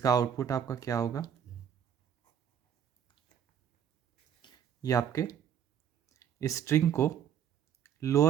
आउटपुट आपका क्या होगा, ये आपके स्ट्रिंग को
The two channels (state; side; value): quieter; left; 8.8 dB